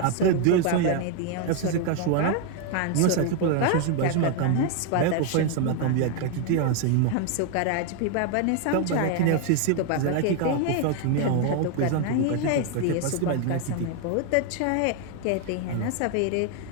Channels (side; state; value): both; different; correlation 0.01